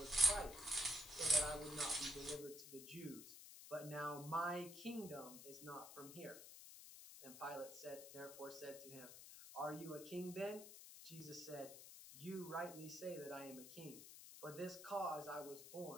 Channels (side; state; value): left; noise; hiss, 13 dB below the sound